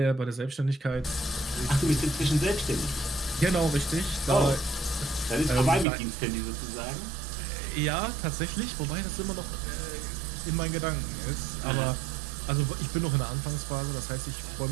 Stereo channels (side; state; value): left; drops out; at 5.9 s